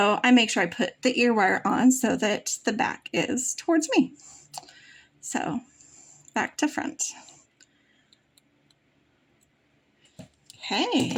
I make sure I put the ear wire on so that the back is towards me. So back to front.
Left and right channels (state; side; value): identical; both; correlation 1.00